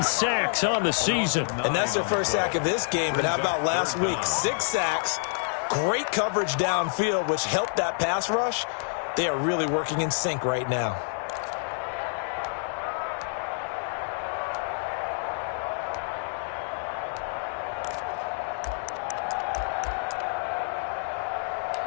sacks on the season. And that's their first sack of this game. But how about last week? 6 sacks. Great coverage downfield, which helped that pass rush. They are really working in sync right now.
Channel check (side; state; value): right; silent; 60 dB below the other